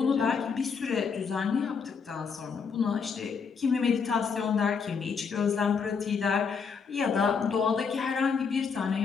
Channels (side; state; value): right; quieter; 5.8 dB